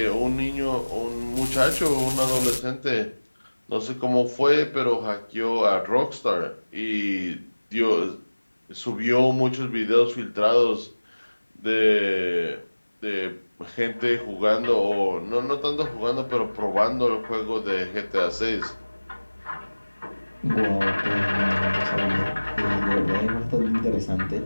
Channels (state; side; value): inverted; both; correlation -1.00